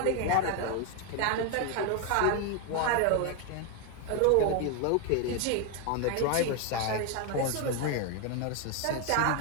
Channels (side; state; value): both; different; correlation 0.01